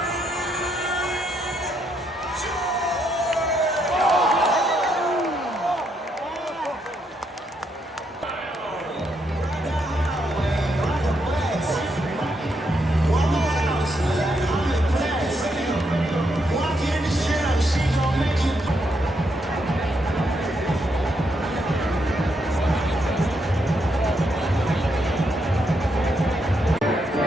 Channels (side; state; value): both; normal; correlation 0.77